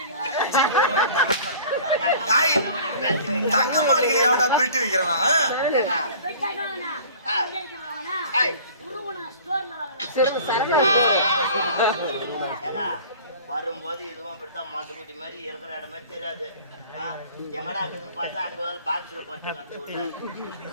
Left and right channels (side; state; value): both; inverted; correlation -0.45